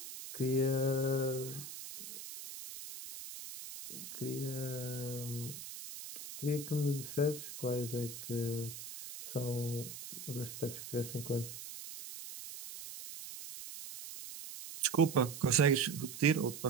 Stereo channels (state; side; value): noise; right; hiss, 11 dB below the sound